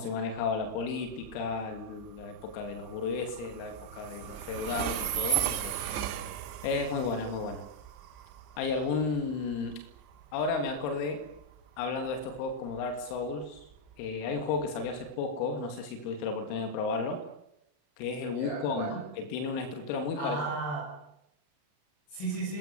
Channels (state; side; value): late; right; 34 ms